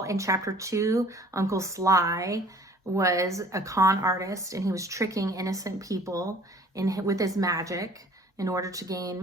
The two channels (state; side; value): normal; both; correlation 0.51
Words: in chapter 2, Uncle Sly was a con artist and he was tricking innocent people with his magic in order to